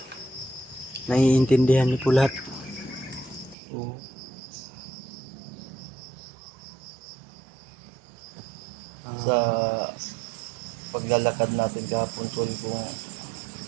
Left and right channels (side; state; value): left; drops out; at 3.6 s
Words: Naiintindihan niyo po lahat. O, Sa paglalakad natin kahapon, tol, kung